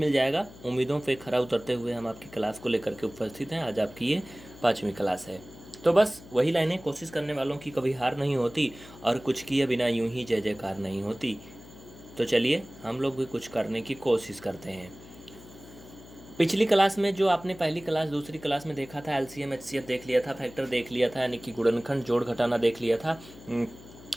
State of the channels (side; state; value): left; noise; hum, 19 dB below the sound